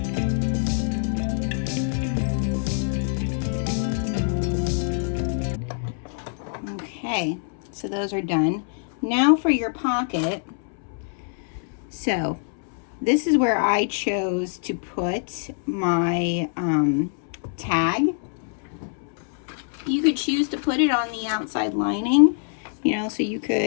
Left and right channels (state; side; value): silent; right; 62 dB below the other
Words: Okay, so those are done. Now for your pocket. So this is where I chose to put my tag. You could choose to put it on the outside lining, you know, so you